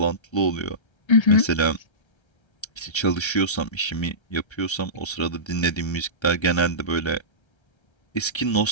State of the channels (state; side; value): late; right; 1.3 ms